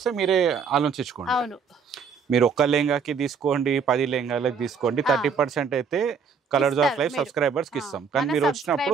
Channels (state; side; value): quieter; left; 5.9 dB